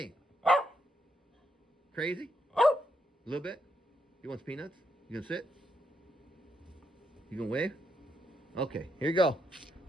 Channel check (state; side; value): normal; both; correlation 0.79